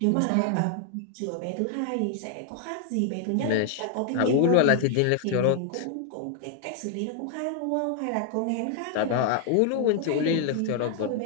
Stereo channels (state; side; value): different; both; correlation 0.00